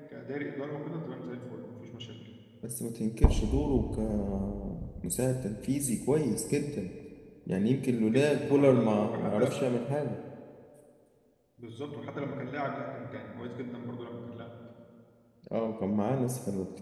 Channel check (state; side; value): identical; both; correlation 1.00